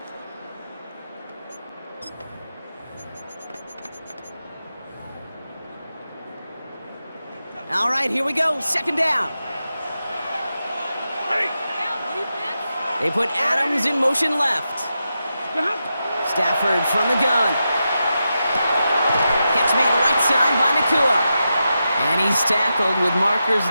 All right, here we go. 2nd down. They put Adams in motion left. Stafford from the gun. Catch made right side by Nakua. And he's tackled with markers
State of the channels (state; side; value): inverted; both; correlation -0.89